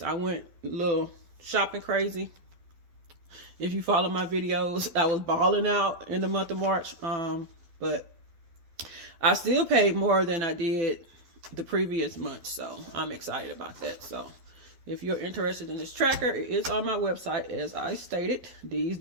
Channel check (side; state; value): left; late; 12 ms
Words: I went a little shopping crazy, if you follow my videos, I was balling out in the month of March. But I still paid more than I did the previous month, so I'm excited about that. So if you're interested in this tracker, it is on my website, as I stated, D's